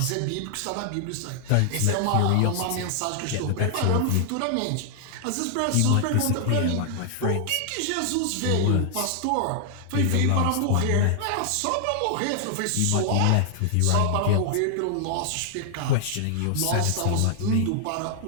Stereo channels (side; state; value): both; different; correlation 0.00